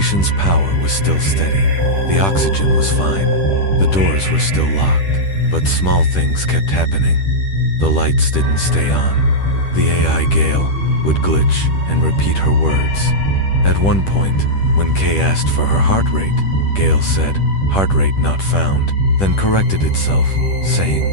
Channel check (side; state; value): right; late; 10 ms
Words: power was still steady. The oxygen was fine. The doors were still locked, but small things kept happening. The lights didn't stay on. The AI Gale would glitch and repeat her words. At one point, when Kay asked for her heart rate, Gale said, "Heart rate not found," then corrected itself, saying,